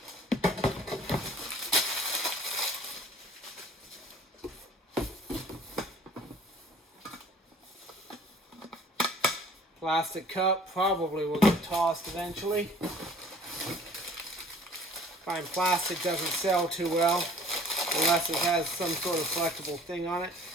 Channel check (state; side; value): normal; both; correlation 0.51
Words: Plastic cup, probably will get tossed eventually. Find plastic doesn't sell too well unless it has some sort of collectible thing on it.